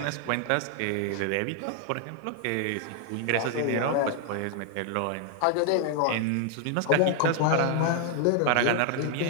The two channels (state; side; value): different; both; correlation 0.00